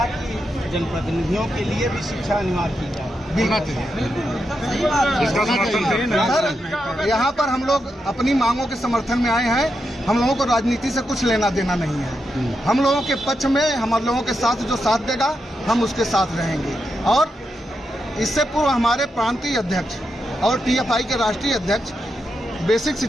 कि जनप्रतिनिधियों के लिए भी शिक्षा अनिवार्य की जाए। सर, यहाँ पर हम लोग अपनी मांगों के समर्थन में आए हैं। हम लोगों को राजनीति से कुछ लेना देना नहीं है। हम लोगों के पक्ष में, हम लोगों के साथ जो साथ देगा हम उसके साथ रहेंगे। और इससे पूर्व हमारे प्रांतीय अध्यक्ष और TFI के राष्ट्रीय अध्यक्ष बेसिक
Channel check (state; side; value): normal; both; correlation 0.85